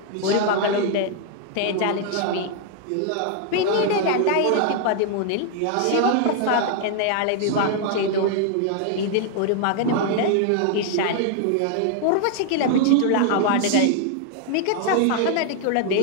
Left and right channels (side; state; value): both; different; correlation 0.00